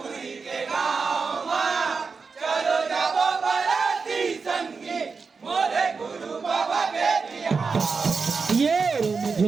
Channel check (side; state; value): left; quieter; 4.9 dB